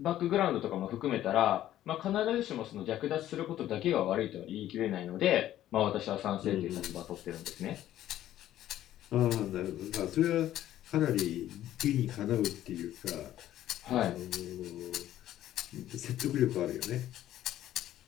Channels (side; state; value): right; quieter; 12.8 dB